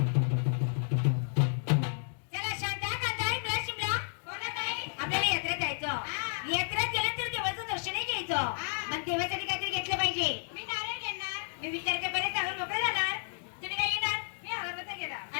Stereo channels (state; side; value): silent; right; digital silence